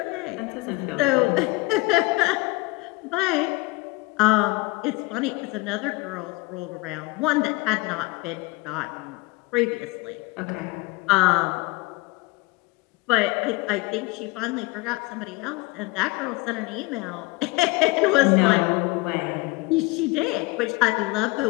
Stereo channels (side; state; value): right; quieter; 23.0 dB